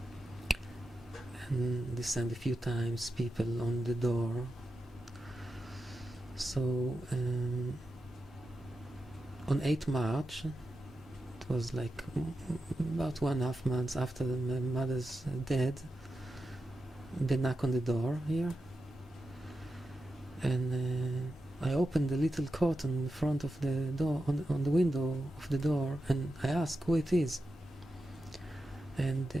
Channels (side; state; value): both; normal; correlation 0.90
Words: And they sent a few times people on the door. So on 8th March, it was like about 1.5 months after my mother's death, they knock on the door here, and I opened the little curtain in front of the door, on the window of the door, and I asked who it is. And